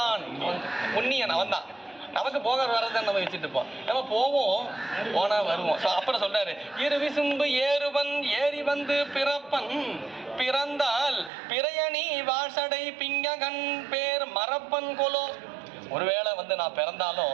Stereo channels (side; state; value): left; drops out; at 11.3 s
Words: உன்னியன் அவன் தான். நமக்கு போக வரதான் நம்ம வச்சுட்டு இருப்போம். நம்ம போவோம், போனா வருவோம். அப்புறம் சொல்றாரு, இரு விசும்பு ஏறுவன் ஏறி வந்து பிறப்பன் பிறந்தால் பிறையணி வாசடை பிங்ககன் பேர் மறப்பன் கொலோ. ஒருவேளை நான்